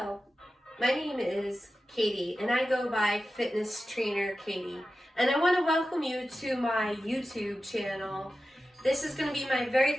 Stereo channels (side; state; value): both; normal; correlation 0.93